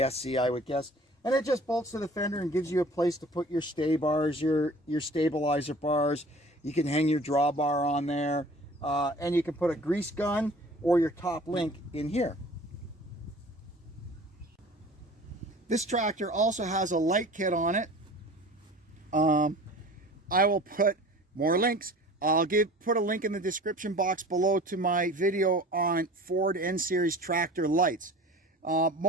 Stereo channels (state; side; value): normal; both; correlation 0.44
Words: I would guess. And it just bolts to the fender and gives you a place to put your stay bars, your stabilizer bars. You can hang your drawbar on there. And you can put a grease gun or your top link in here. This tractor also has a light kit on it. I will put more links. I'll put a link in the description box below to my video on Ford N-Series tractor lights.